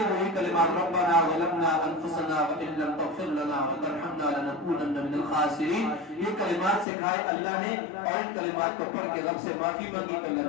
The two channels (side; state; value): right; drops out; at 6.9 s